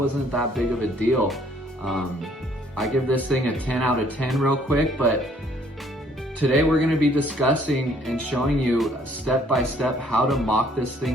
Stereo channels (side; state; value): both; normal; correlation 0.62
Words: that big of a deal. I give this thing a 10 out of 10 real quick, but today we're gonna be discussing and showing you step by step how to mock this